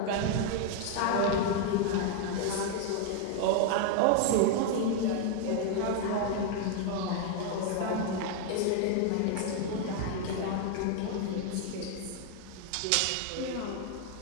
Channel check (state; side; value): different; both; correlation 0.01